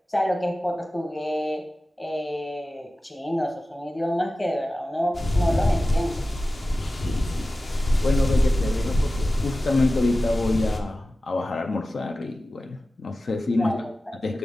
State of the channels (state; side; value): normal; both; correlation 0.95